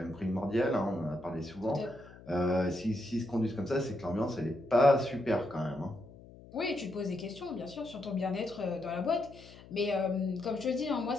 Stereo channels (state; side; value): noise; left; hum, 20 dB below the sound